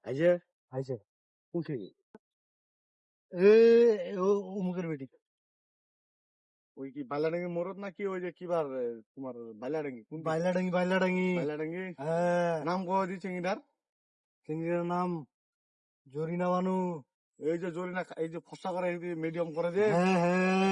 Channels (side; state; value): both; identical; correlation 1.00